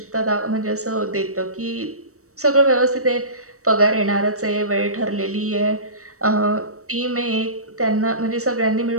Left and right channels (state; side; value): late; left; 0.65 ms